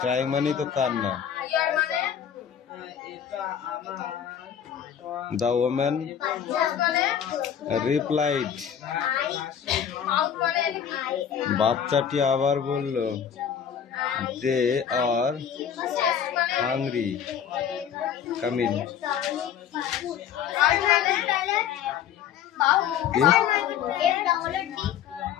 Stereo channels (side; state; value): right; quieter; 8.7 dB